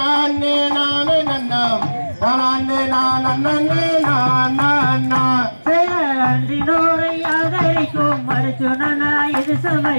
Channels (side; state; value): both; inverted; correlation -1.00